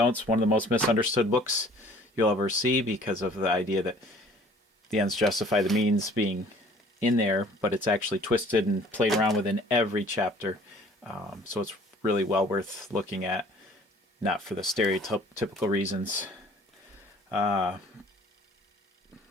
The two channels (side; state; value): both; normal; correlation 0.53